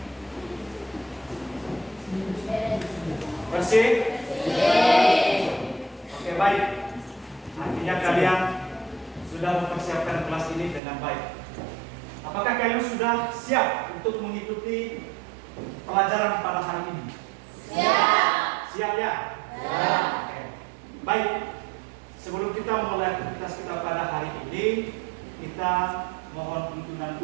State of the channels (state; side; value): drops out; left; at 10.8 s